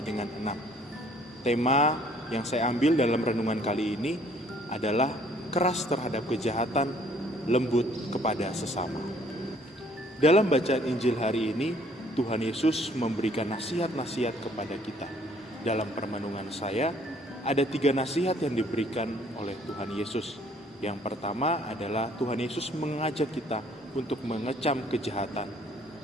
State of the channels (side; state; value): both; normal; correlation 0.60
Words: dengan 6. Tema yang saya ambil dalam renungan kali ini adalah keras terhadap kejahatan, lembut kepada sesama. Dalam bacaan Injil hari ini, Tuhan Yesus memberikan nasihat-nasihat kepada kita. Dalam permenungan saya, ada 3 nasihat yang diberikan oleh Tuhan Yesus. Yang pertama adalah Tuhan Yesus mengajak kita untuk mengecam kejahatan.